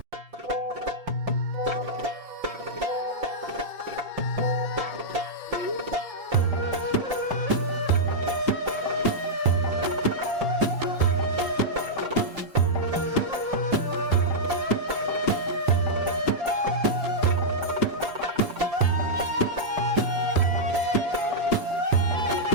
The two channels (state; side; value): late; left; 5.7 ms